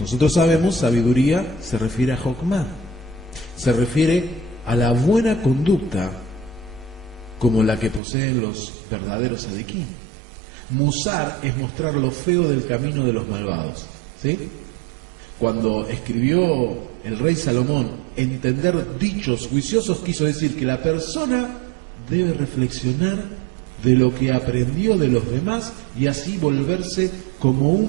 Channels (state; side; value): drops out; left; at 8.0 s